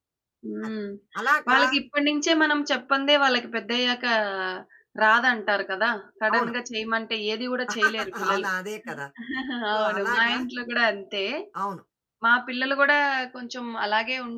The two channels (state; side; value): identical; both; correlation 1.00